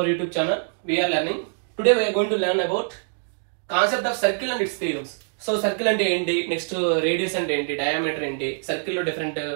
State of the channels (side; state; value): left; silent; digital silence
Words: YouTube channel. We are learning. Today we are going to learn about concept of circle and its theorems. So circle ante enti, next radius ante enti, diameter enti, circle lo different